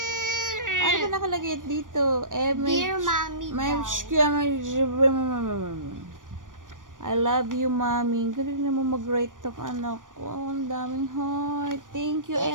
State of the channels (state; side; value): late; left; 0.88 ms